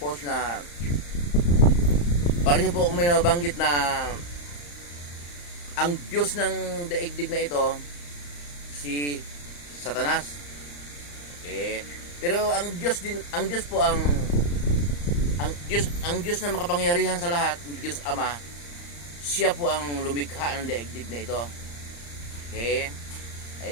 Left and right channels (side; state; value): right; late; 35 ms